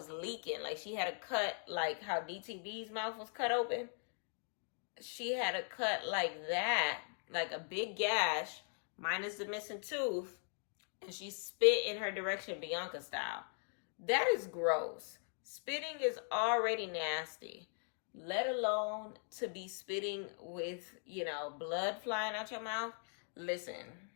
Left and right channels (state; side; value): silent; right; 51 dB below the other